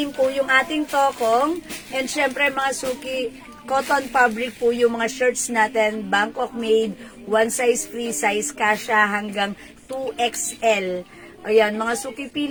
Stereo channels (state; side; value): identical; both; correlation 1.00